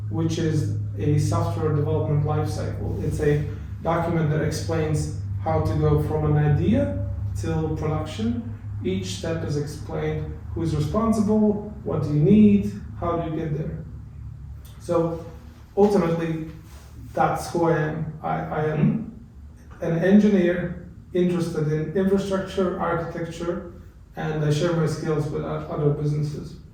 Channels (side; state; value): both; identical; correlation 1.00